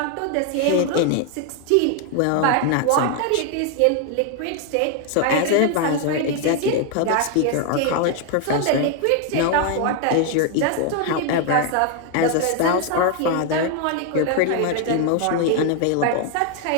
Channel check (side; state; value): both; different; correlation 0.00